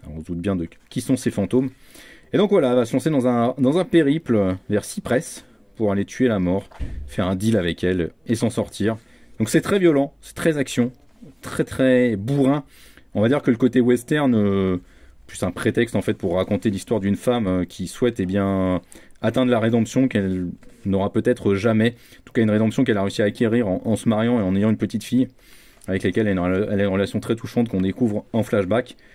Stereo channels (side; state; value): both; identical; correlation 1.00